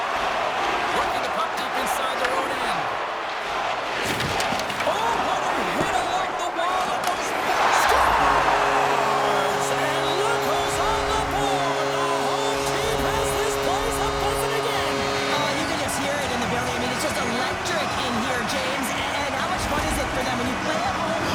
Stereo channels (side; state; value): both; identical; correlation 1.00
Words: Working the puck deep inside their own end. Oh, what a hit along the wall! Almost scores! And look who's on the board! The home team has this place a buzzing again! Oh, you can just hear it in the building. I mean, it's just electric in here, James. And how much fun is it for them when you play at home,